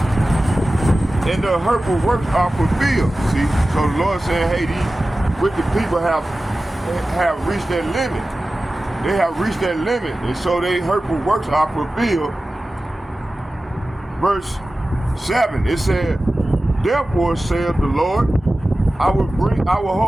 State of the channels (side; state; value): both; normal; correlation 0.95